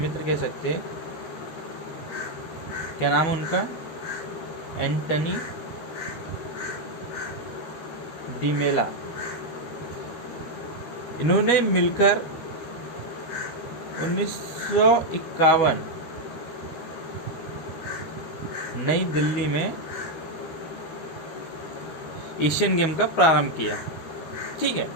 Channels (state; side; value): late; right; 13 ms